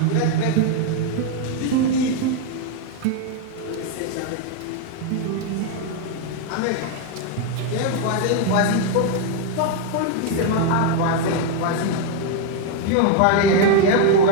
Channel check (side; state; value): both; different; correlation 0.01